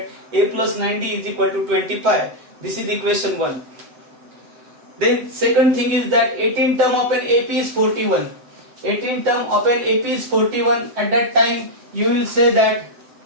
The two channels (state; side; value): late; left; 7.8 ms